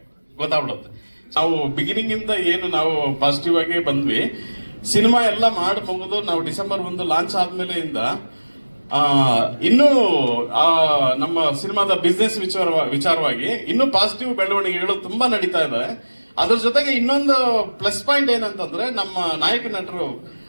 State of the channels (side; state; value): both; inverted; correlation -1.00